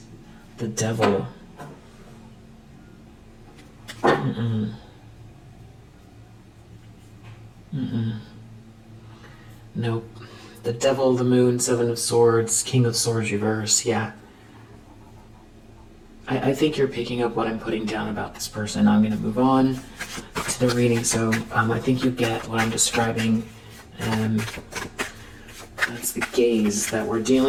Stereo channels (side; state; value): both; identical; correlation 1.00